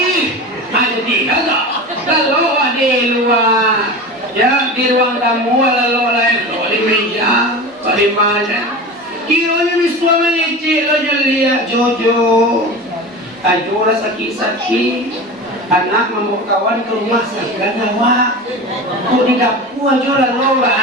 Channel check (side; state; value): both; normal; correlation 0.30